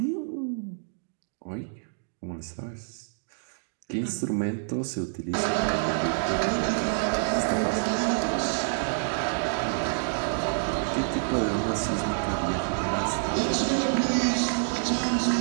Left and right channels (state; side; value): silent; left; digital silence